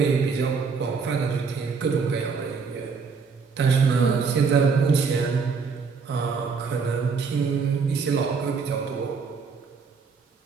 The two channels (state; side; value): quieter; left; 5.2 dB